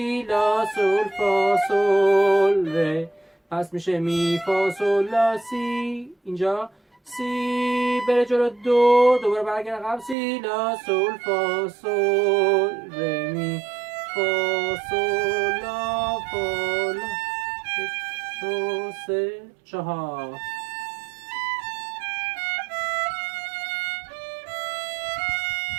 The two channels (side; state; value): left; drops out; at 10.2 s